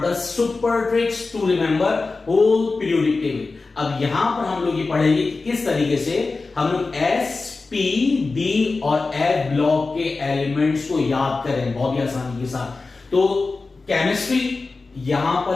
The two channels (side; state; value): right; quieter; 3.8 dB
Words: the super tricks to remember whole periodic table. अब यहां पर हम लोग ये पढ़ेंगे कि किस तरीके से हम लोग एस पी डी और एफ ब्लॉक के एलिमेंट्स को याद करें बहुत ही आसानी के साथ। तो केमिस्ट्री यहां